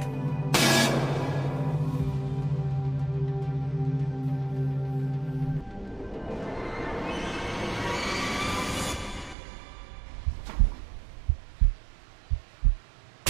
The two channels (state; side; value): drops out; left; at 9.3 s